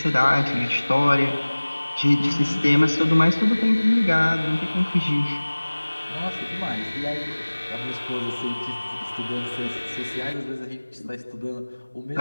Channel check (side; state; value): both; inverted; correlation -1.00